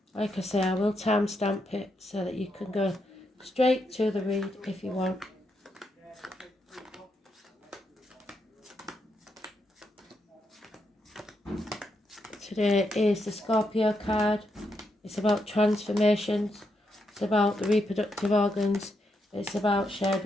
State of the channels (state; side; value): normal; both; correlation 0.81